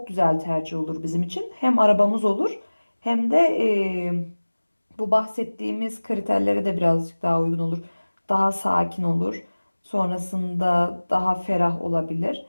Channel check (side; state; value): both; inverted; correlation -1.00